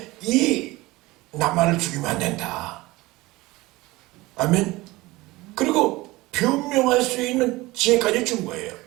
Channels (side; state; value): left; quieter; 20.5 dB